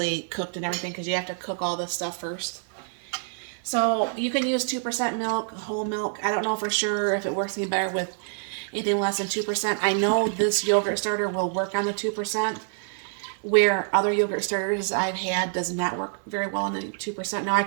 cooked and everything, because you have to cook all this stuff first. So you can use 2% milk, whole milk. I don't know for sure if it works any better with anything less than 2%. I know this yogurt starter will work on the 2%, where other yogurt starters I've had does not work very well on the 2%. Now I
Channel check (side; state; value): left; silent; digital silence